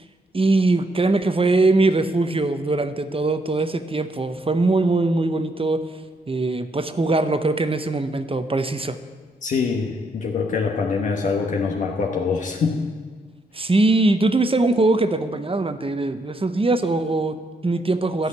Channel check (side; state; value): both; normal; correlation 0.74